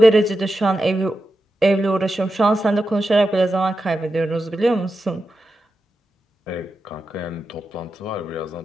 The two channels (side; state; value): both; normal; correlation 0.89